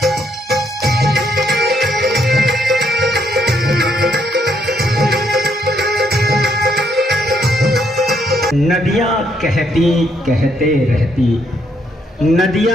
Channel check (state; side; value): normal; both; correlation 0.73